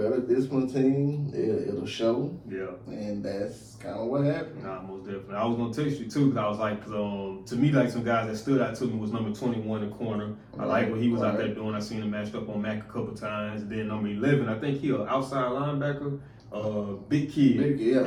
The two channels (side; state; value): both; identical; correlation 1.00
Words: discipline team game, it'll show. Yeah. And that's kind of what happened. Nah, most definitely. I was gonna text you too, because I was like, to me, like some guys that stood out to me was number 21 in the corner. I like what he was out there doing. I seen him matched up on Mac a couple times. And then number 11, I think he an outside linebacker. Big kid.